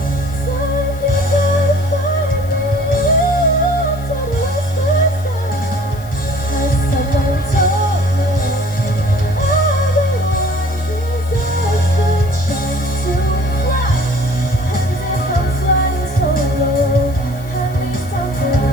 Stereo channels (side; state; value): left; noise; hiss, 22 dB below the sound